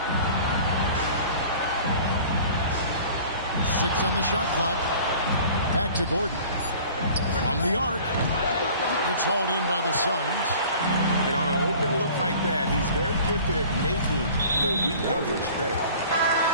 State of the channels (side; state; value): both; inverted; correlation -0.46